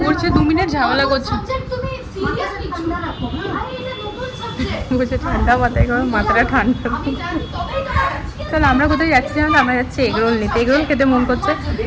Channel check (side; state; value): both; identical; correlation 1.00